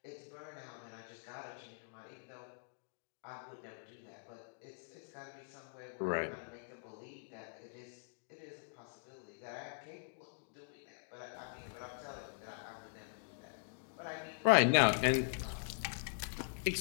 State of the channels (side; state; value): right; silent; digital silence